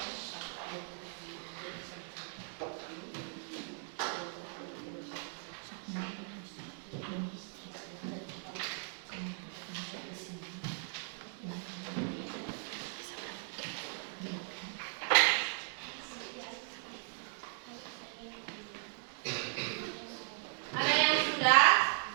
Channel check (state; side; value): silent; left; 53 dB below the other